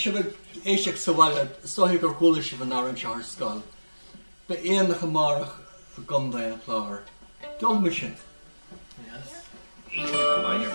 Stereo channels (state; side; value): inverted; both; correlation -1.00